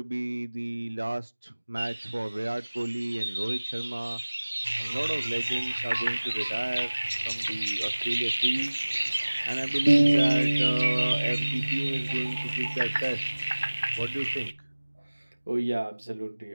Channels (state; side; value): inverted; both; correlation -1.00